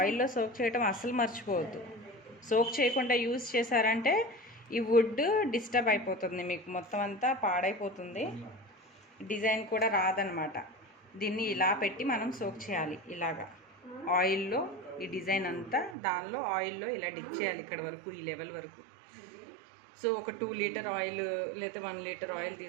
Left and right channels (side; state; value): left; drops out; at 16.0 s